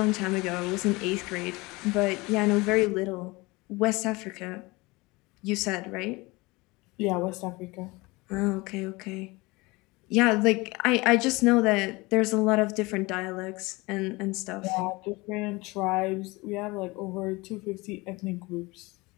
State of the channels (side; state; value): right; quieter; 23.5 dB